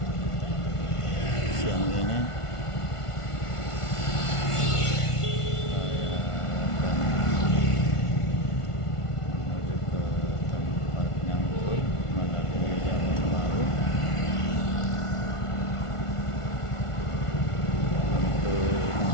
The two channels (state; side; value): late; right; 1.5 ms